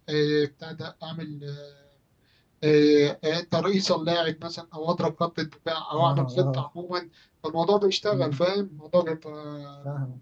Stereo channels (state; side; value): identical; both; correlation 1.00